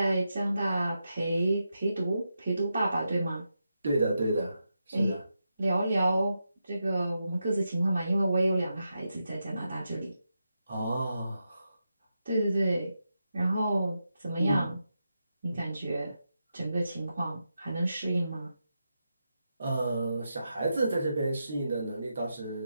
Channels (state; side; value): inverted; both; correlation -0.87